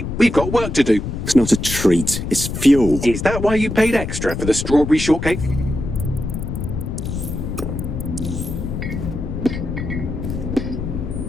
We've got work to do. It's not a treat. It's fuel. Is that why you paid extra for the strawberry shortcake?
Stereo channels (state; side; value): noise; left; rumble, 5 dB below the sound